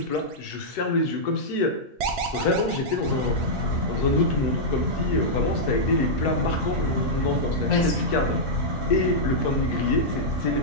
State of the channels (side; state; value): both; normal; correlation -0.08